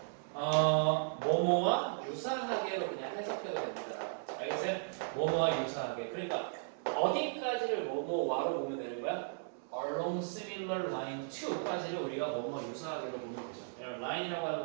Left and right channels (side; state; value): left; silent; 54 dB below the other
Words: 뭐뭐와 유사하게로 그냥 해석해도 됩니다. 알겠어요? 뭐뭐와 유사하게. 그러니까 어디까지를 뭐뭐와로 보면 되는 거야? along similar line to까지를 우리가 뭐뭐 유사하게로 보면 되죠. 라인이라고